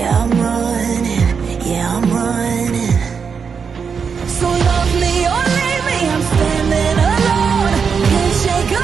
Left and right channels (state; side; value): quieter; left; 6.1 dB